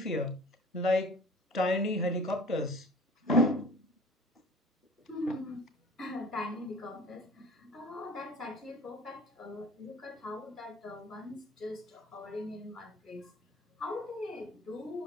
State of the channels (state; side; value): normal; both; correlation 0.45